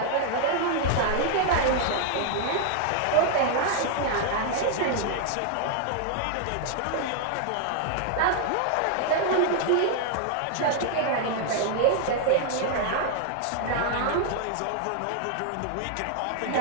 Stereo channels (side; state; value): both; different; correlation 0.00